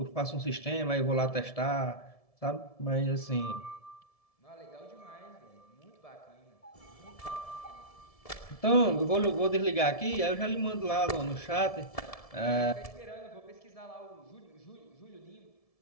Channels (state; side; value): late; right; 1.7 ms